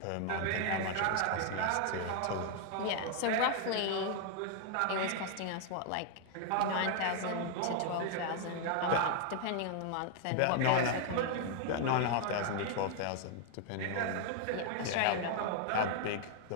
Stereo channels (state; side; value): different; both; correlation 0.00